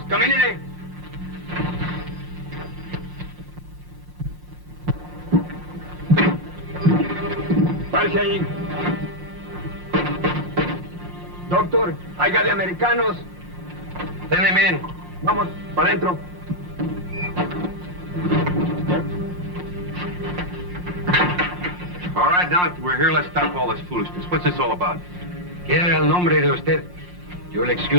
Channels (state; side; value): late; left; 5.6 ms